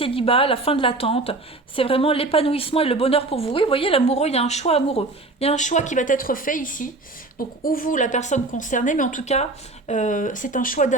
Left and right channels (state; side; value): quieter; left; 3.2 dB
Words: la fin de l'attente. C'est vraiment l'épanouissement et le bonheur pour vous. Oui, vous voyez, l'amoureux, il y a un choix amoureux. Il y a un choix qui va être fait ici. Donc, ou vous, la personne concernée, mais en tout cas, c'est un choix